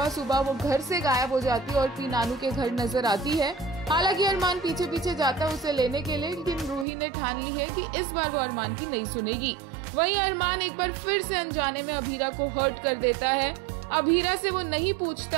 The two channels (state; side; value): drops out; left; at 6.9 s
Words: सुबह वो घर से गायब हो जाती है और पी नानू के घर नजर आती है। हालांकि अरमान पीछे पीछे जाता है उसे लेने के लिए, लेकिन रूही ने ठान ली है कि इस बार वो अरमान की नहीं सुनेगी। वहीं अरमान एक बार फिर से अनजाने में अभीरा को हर्ट कर देता है। अभीरा से वो नहीं